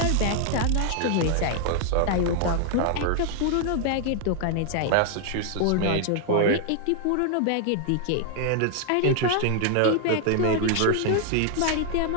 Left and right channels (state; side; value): different; both; correlation 0.00